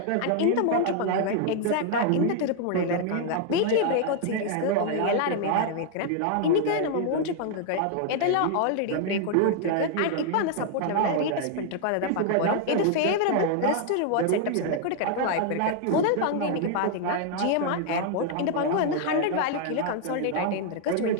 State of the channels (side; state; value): both; different; correlation 0.00